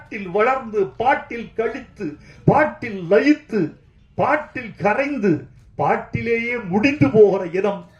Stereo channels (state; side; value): identical; both; correlation 1.00